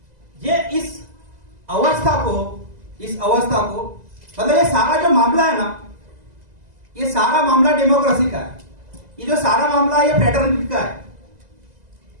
ये इस अवस्था को मतलब ये सारा जो मामला है ना, ये सारा मामला डेमोक्रेसी का है। ये जो सारा मामला है ये फ्रेटर्निटी का है,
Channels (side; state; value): left; late; 2.0 ms